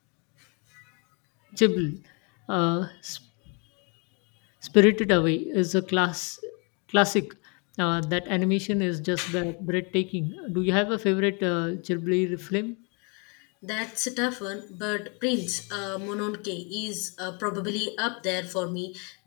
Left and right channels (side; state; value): right; quieter; 33.9 dB